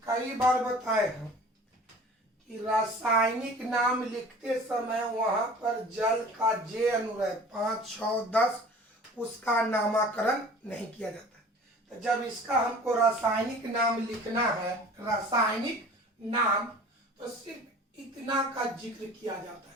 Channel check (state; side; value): normal; both; correlation 0.45